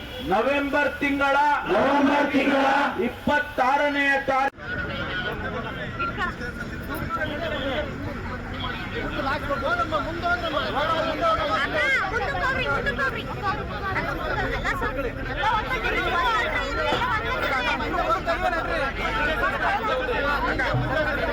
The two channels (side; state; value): both; identical; correlation 1.00